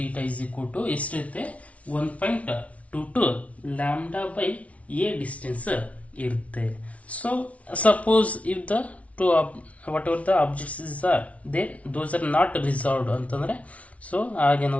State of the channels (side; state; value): right; late; 0.065 ms